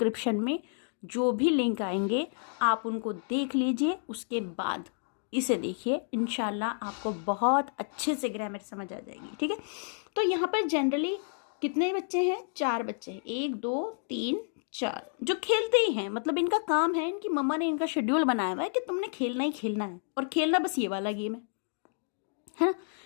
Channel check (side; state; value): right; silent; digital silence